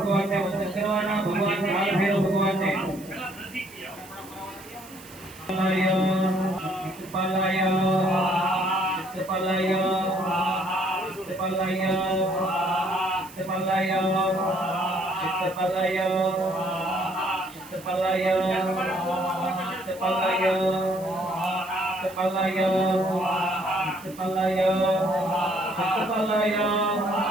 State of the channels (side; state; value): right; noise; hiss, 20 dB below the sound